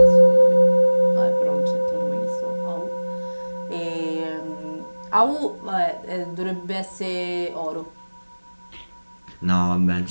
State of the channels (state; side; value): inverted; both; correlation -1.00